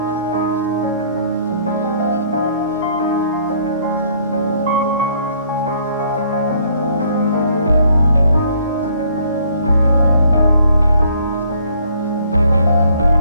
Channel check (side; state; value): both; inverted; correlation -0.62